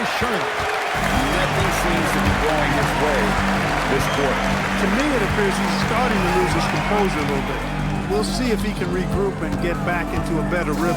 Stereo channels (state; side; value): identical; both; correlation 1.00